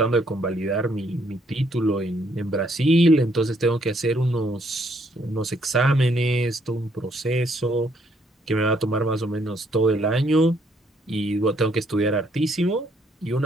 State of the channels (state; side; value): normal; both; correlation 0.69